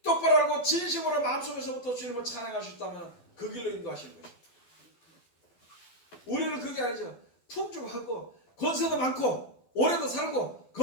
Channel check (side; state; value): right; late; 11 ms